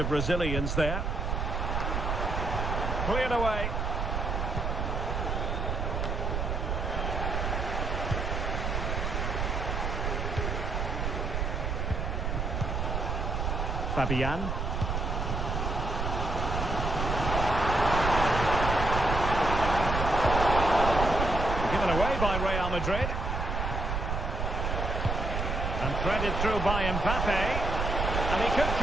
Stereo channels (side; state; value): right; noise; rumble, 1 dB below the sound